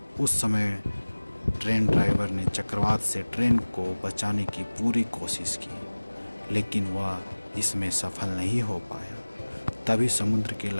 उस समय ट्रेन ड्राइवर ने चक्रवात से ट्रेन को बचाने की पूरी कोशिश की, लेकिन वह इसमें सफल नहीं हो पाया। तभी समुद्र की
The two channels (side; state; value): both; inverted; correlation -1.00